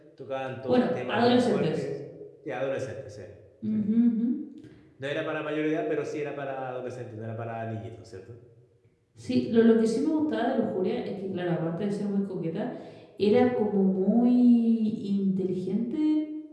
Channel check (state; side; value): identical; both; correlation 1.00